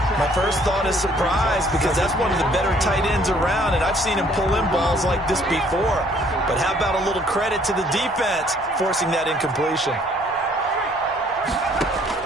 My first thought is surprise, because that's one of the better tight ends around, and I've seen him pull in balls like this before. But how about a little credit to the defense forcing that incompletion?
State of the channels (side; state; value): both; normal; correlation 0.61